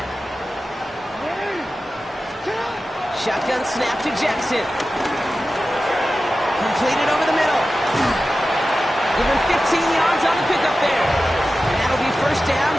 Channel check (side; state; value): both; normal; correlation 0.94